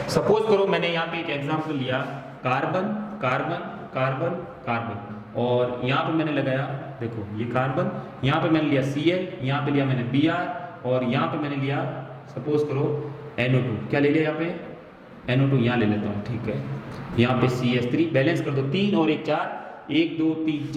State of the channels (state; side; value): identical; both; correlation 1.00